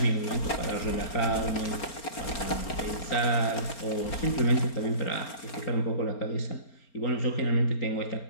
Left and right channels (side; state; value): right; late; 4.3 ms